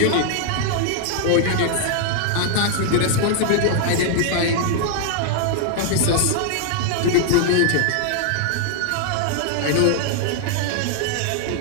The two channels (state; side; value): different; both; correlation 0.00